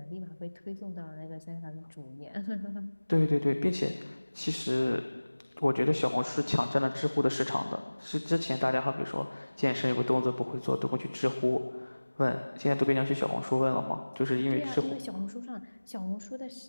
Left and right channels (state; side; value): inverted; both; correlation -1.00